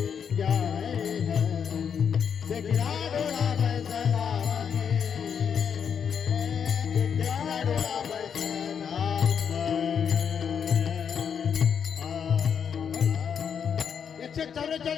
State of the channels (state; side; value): quieter; right; 7.4 dB